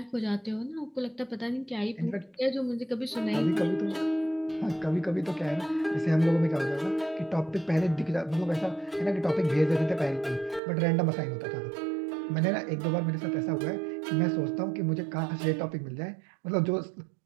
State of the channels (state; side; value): drops out; left; at 10.6 s